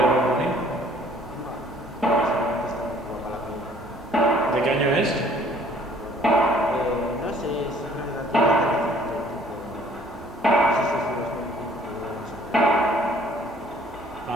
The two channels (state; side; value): normal; both; correlation 0.57